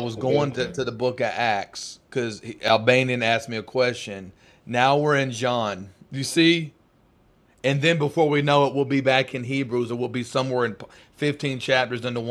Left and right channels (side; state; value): both; identical; correlation 1.00